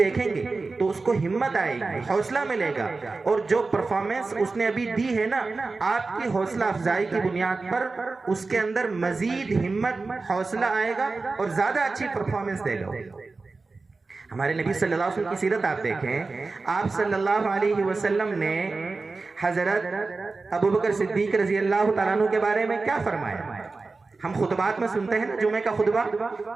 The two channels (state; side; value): quieter; left; 3.8 dB